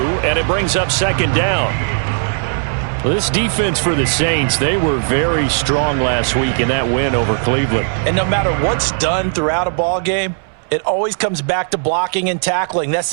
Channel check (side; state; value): left; silent; digital silence